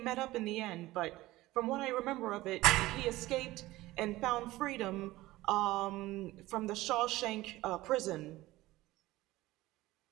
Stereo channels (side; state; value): left; quieter; 17.9 dB